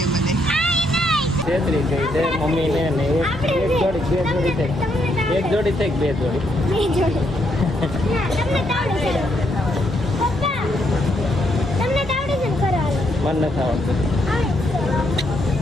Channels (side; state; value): both; normal; correlation 0.76